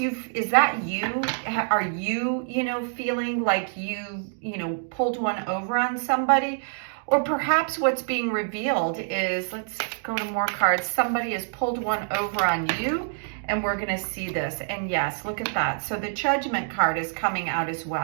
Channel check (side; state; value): left; silent; digital silence